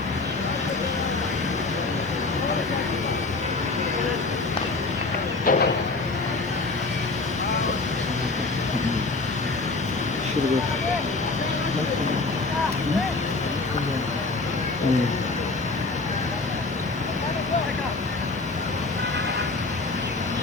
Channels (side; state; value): right; quieter; 3.6 dB